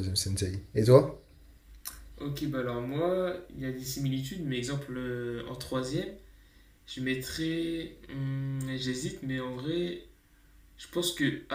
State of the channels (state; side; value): identical; both; correlation 1.00